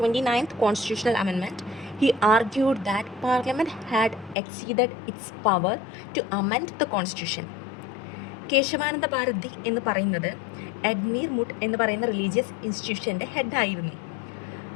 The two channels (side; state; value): right; drops out; at 4.4 s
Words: 29th constitutional amendment. He argued that Parliament had exceeded its power to amend the constitution. Kesavananda Bharati എന്ന് പറയുന്നത് എഡ്മീർ മുട്ട് എന്ന് പറയുന്ന religious ഇൻസ്റ്റിറ്റ്യൂഷൻ്റെ ഹെഡായിരുന്നു.